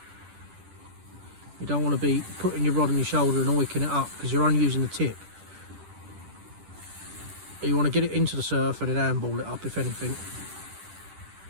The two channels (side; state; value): left; late; 10 ms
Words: You don't want to be putting your rod on your shoulder and wicking it up, because you're only using the tip. You want to get it into the surf and then handball it up, if anything,